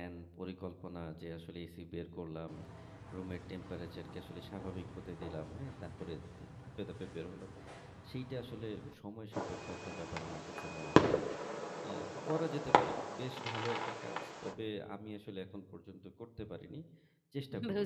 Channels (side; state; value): both; identical; correlation 1.00